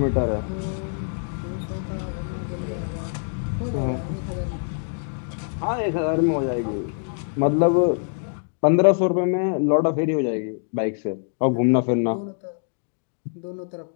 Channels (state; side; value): silent; right; digital silence